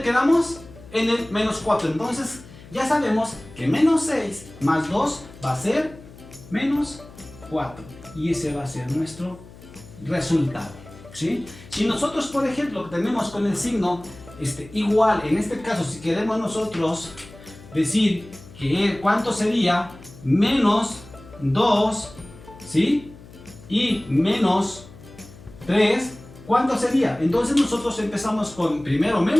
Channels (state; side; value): noise; left; hum, 19 dB below the sound